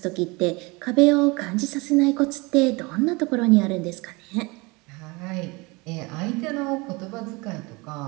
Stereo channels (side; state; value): left; quieter; 25.6 dB